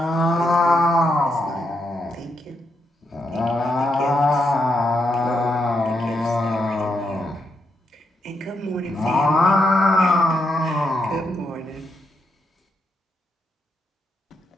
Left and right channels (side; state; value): both; normal; correlation 0.81